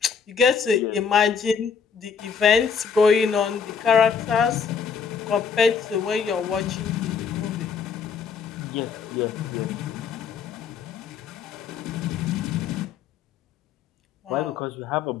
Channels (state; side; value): quieter; right; 6.3 dB